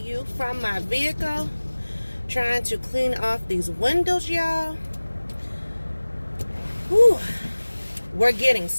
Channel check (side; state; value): both; inverted; correlation -1.00